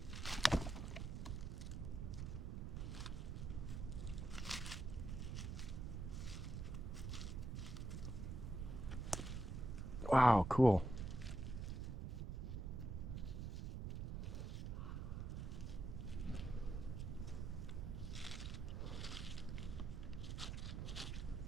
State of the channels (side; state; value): right; noise; rumble, 4 dB below the sound